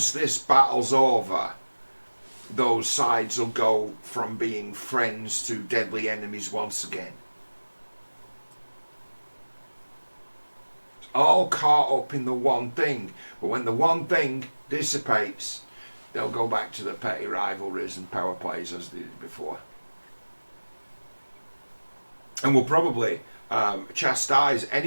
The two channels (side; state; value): both; inverted; correlation -1.00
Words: this battle's over, those sides will go from being friends to deadly enemies once again. It's all caught up in the one thing, but when the one thing dissipates, they'll go back to the petty rivalries and power plays as they did before. And we'll probably chastise